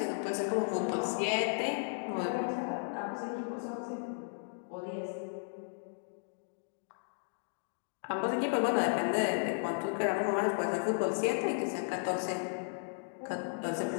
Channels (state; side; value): silent; right; digital silence